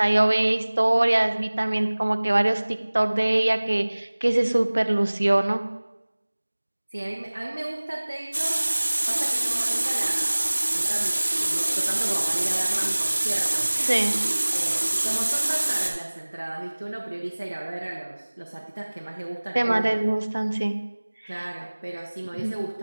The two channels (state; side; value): inverted; both; correlation -1.00